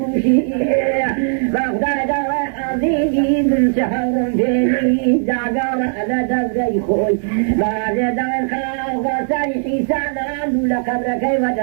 شيبي بغداد وحزيزي من شهر فيني زعقار على دزي خوي بعد دار خاوة سريحي سنان لقبرك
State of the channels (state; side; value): silent; left; digital silence